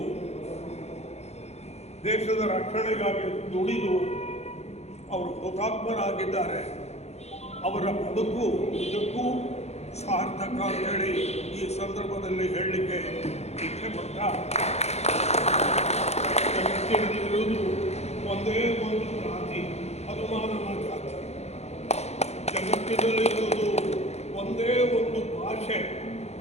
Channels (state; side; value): late; right; 0.31 ms